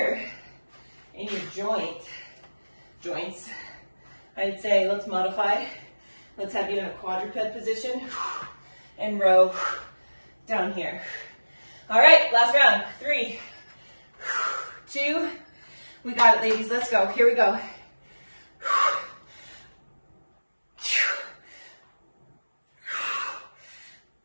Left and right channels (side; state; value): both; inverted; correlation -1.00